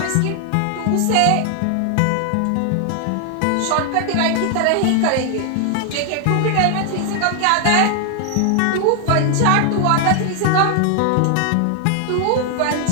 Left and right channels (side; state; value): both; different; correlation 0.00